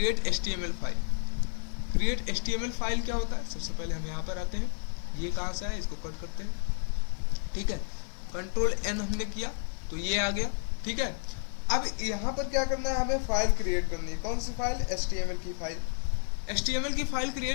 HTML file. Create HTML file क्या होता है। सबसे पहले हम यहाँ पर आते हैं, ये कहाँ से है, इसको कट करते हैं, ठीक है। कंट्रोल N हमने किया तो ये आ गया, ठीक है। अब यहाँ पर क्या करना है, हमें फाइल क्रिएट करनी है। कौन सी फाइल? HTML की फाइल। HTML की फाइल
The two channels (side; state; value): right; silent; digital silence